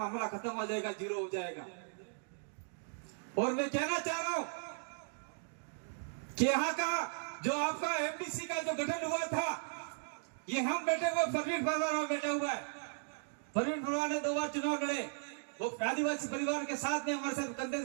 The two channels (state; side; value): silent; left; digital silence